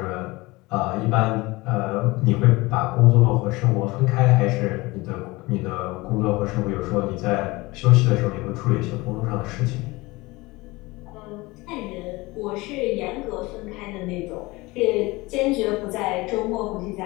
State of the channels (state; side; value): quieter; right; 22.2 dB